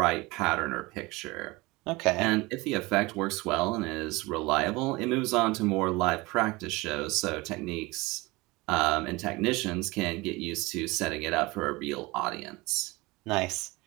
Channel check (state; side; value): quieter; left; 22.7 dB